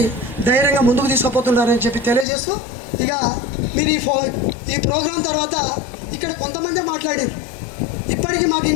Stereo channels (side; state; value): right; drops out; at 2.2 s